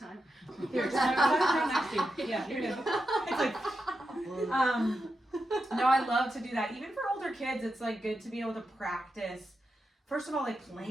Here, just right next to you. Yeah, you're good. It's like, no, I love to do that. Even for older kids, it's like good to be able to practice. First of all, like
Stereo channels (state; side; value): normal; both; correlation 0.88